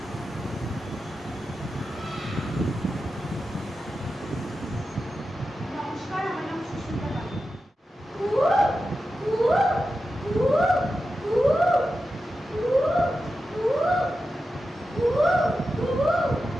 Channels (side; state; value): both; normal; correlation 0.91